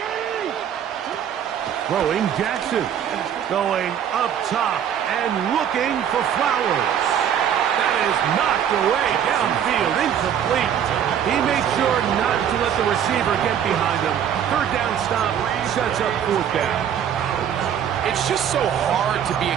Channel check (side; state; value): left; quieter; 9.1 dB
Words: Throwing Jackson. Going up top and looking for Flowers. That is knocked away downfield, incomplete. He made sure not to let the receiver get behind him. Third down stop sets up fourth down. It's just so hard to be a